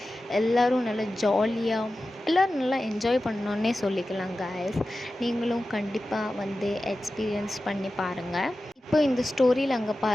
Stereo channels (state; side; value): normal; both; correlation 0.94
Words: எல்லோரும் நல்லா ஜாலியாக எல்லோரும் நல்லா என்ஜாய் பண்ணோன்னே சொல்லிக்கலாம் கைஸ். நீங்களும் கண்டிப்பாக வந்து எக்ஸ்பீரியன்ஸ் பண்ணி பாருங்கள். இப்போ இந்த ஸ்டோரியில் அங்கே